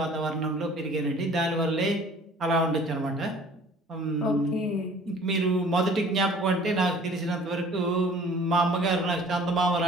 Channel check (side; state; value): both; normal; correlation 0.50